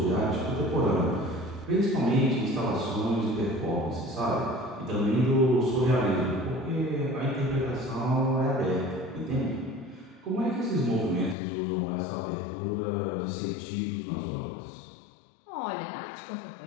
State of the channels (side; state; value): right; drops out; at 11.4 s